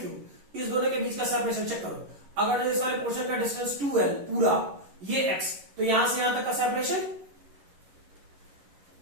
इस दोनों के बीच का सेपरेशन चेक करो। अगर इस वाले पोर्शन का डिस्टेंस 2l पूरा, ये x, तो यहां से यहां तक का सेपरेशन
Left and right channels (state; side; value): late; left; 11 ms